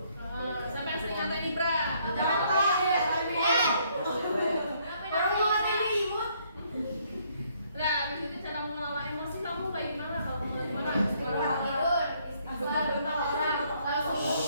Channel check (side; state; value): both; inverted; correlation -0.68